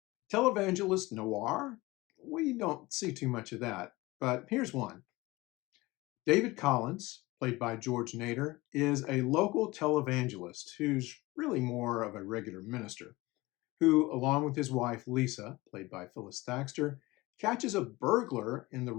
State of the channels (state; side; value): quieter; right; 21.0 dB